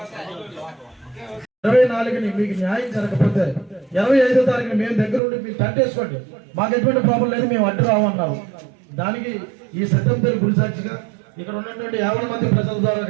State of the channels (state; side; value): drops out; left; at 5.2 s